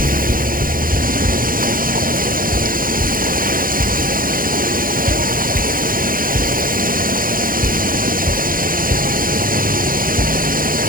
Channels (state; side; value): late; left; 0.41 ms